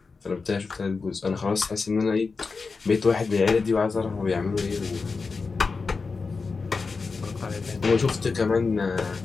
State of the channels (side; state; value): right; quieter; 4.5 dB